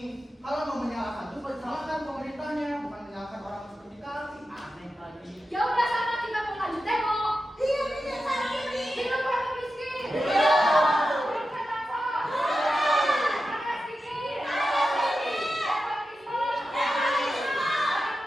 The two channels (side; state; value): both; normal; correlation 0.91